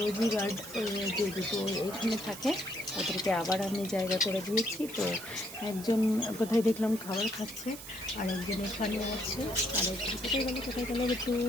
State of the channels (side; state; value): right; noise; hiss, 13 dB below the sound